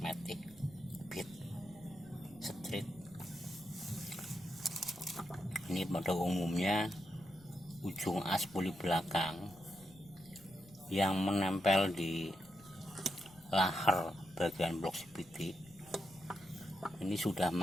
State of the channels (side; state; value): left; noise; rumble, 24 dB below the sound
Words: Beat Street, ini pada umumnya ujung aspuli belakang yang menempel di lahar bagian blok CVT ini sudah